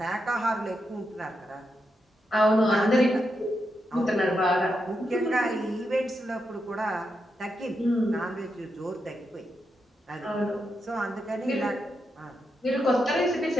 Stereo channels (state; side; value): normal; both; correlation 0.84